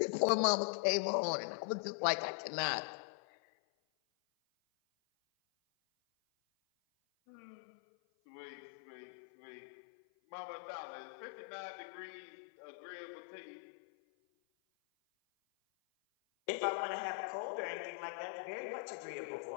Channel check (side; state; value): right; silent; 50 dB below the other